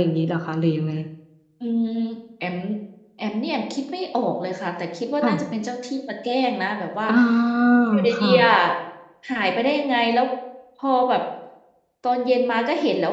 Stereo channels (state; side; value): identical; both; correlation 1.00